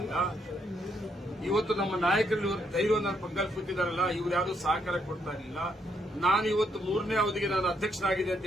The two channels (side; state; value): both; normal; correlation 0.75